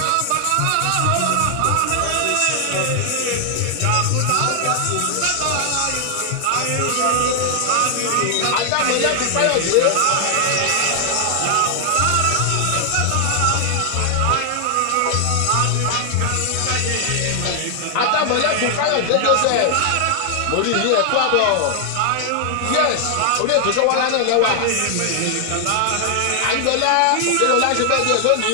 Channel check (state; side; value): different; both; correlation 0.00